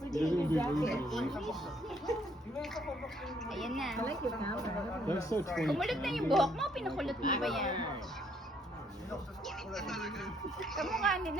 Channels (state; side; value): normal; both; correlation 0.68